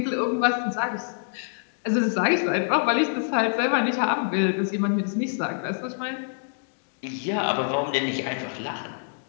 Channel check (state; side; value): silent; right; digital silence